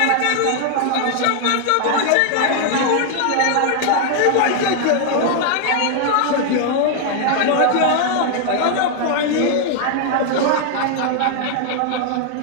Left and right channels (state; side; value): different; both; correlation 0.00